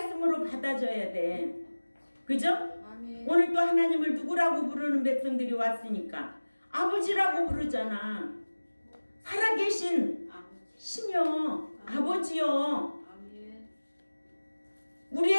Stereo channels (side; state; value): both; inverted; correlation -1.00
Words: 받아줘야 돼. 그죠? 아멘. 오늘 또 하나님을 누구라고 부르는 백성들이 왔으니까 아버지라고 부르잖아. 살아계신 신이여, 아버지여. 아멘.